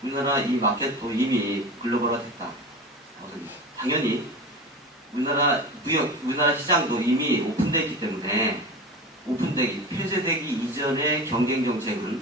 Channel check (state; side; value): normal; both; correlation 0.30